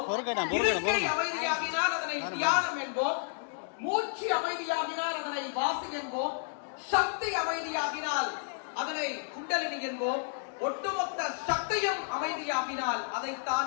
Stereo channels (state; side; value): silent; right; digital silence